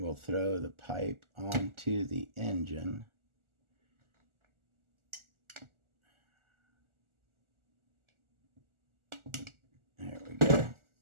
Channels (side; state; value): left; late; 1.4 ms